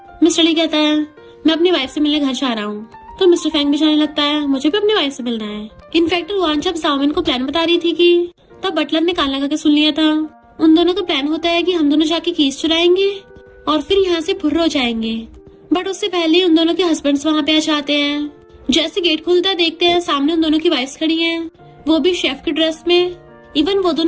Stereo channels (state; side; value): identical; both; correlation 1.00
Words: मिस्टर ली कहता है मैं अपनी वाइफ से मिलने घर जा रहा हूँ। तो मिस्टर फैंग भी जाने लगता है मुझे भी अपनी वाइफ से मिलना है। इनफैक्ट रुआन जब जाओमिन को प्लान बता रही थी कि तब बटलर ने कान लगा के सुन लिया था। उन दोनों का प्लान होता है कि हम दोनों जाके कीज चुराएंगे और फिर यहाँ से फुर्र हो जाएंगे। बट उससे पहले उन दोनों के हस्बैंड्स वहाँ पे आ जाते हैं। जैसे गेट खुलता देखते हैं सामने उन दोनों की वाइफ्स खड़ी हैं, वो भी शेफ की ड्रेस में। इवन वो